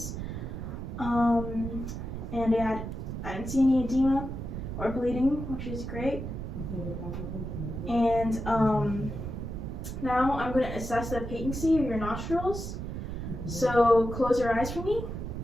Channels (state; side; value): noise; right; rumble, 6 dB below the sound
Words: And I didn't see any edema or bleeding, which is great. And now I'm going to assess the patency of your nostrils. So close your eyes for me.